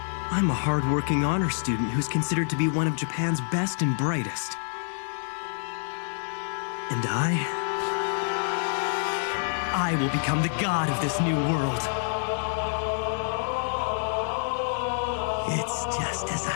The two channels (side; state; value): right; silent; digital silence